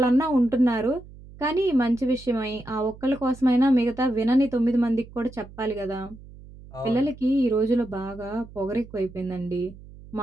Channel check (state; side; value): noise; right; hum, 19 dB below the sound